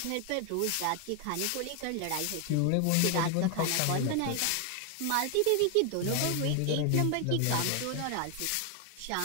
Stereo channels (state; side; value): different; both; correlation 0.01